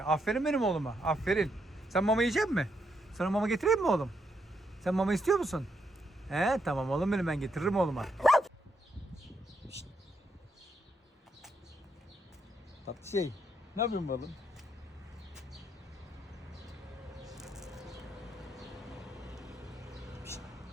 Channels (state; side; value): normal; both; correlation 0.79